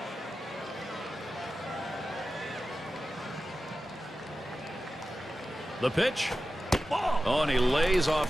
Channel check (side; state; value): both; normal; correlation 0.93